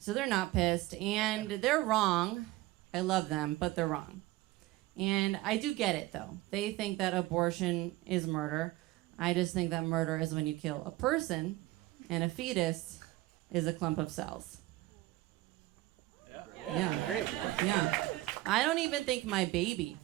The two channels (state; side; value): quieter; left; 18.3 dB